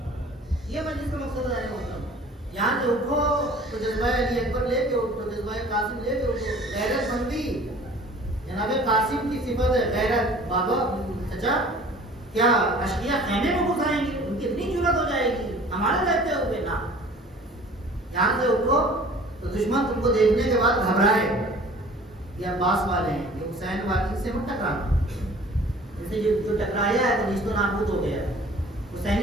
قاسم لے کے غیرت مندی جناب قاسم کی صفت ہے غیرت. بابا چچا کیا اشقیاء خیمے میں گھس آئیں گے؟ ان کی اتنی جرات ہو جائے گی ہمارے رہتے ہوئے؟ نا یہاں سے اٹھو تو دشمن تم کو دیکھنے کے بعد گھبرائے یہ عباس والے ہیں یہ حسین والے سے مت ٹکرانا. جیسے جو ٹکرایا ہے تو نیست و نابود ہو گیا. حسینی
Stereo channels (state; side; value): normal; both; correlation 0.48